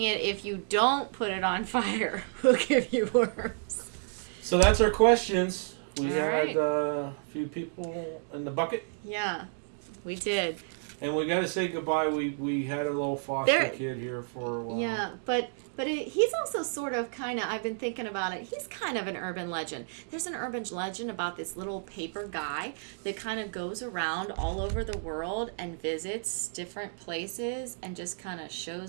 it if you don't put it on fire will give you worms. So that's our questions. We All had right. a few people in the bucket. Yeah, we did. And we got to say goodbye. We had a little foster There- kid here for a while. Yeah, but he's also sort of kind of, I've been thinking about it, he's kind of an urban legend. There's an urban legend about this little paper guy that kind of goes around all over the world and visits different places and just kind of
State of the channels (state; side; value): silent; left; digital silence